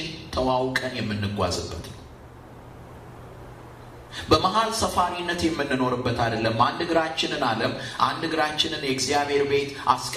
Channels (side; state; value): both; identical; correlation 1.00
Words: ተዋውቀን የምንጓዝበት ነው። በመሃል ሰፋሪነት የምንኖርበት አይደለም። አንድ እግራችንን ዓለም አንድ እግራችንን የእግዚአብሔር ቤት